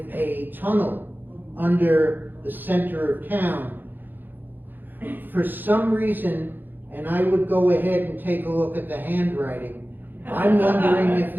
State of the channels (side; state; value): left; late; 0.090 ms